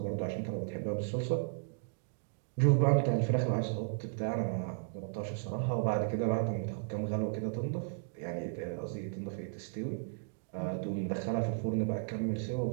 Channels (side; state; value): left; silent; digital silence